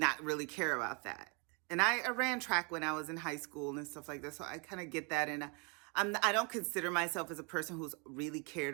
really care about that. And I ran track when I was in high school and stuff like that, so I kind of get that. And I don't consider myself as a person who's really cared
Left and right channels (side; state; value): left; quieter; 33.4 dB